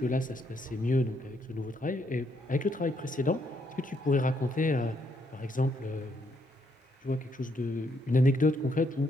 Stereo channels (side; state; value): both; normal; correlation 0.74